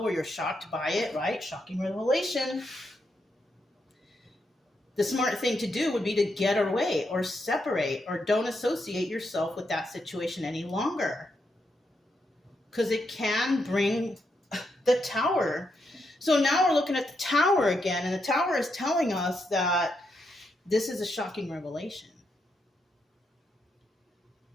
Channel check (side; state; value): both; normal; correlation 0.81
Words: or you're shocked by it, right? Shocking revelation. The smart thing to do would be to get away or separate, or don't associate yourself with that situation any longer. Because it can bring the Tower. So now we're looking at the Tower again, and the Tower is telling us that this is a shocking revelation.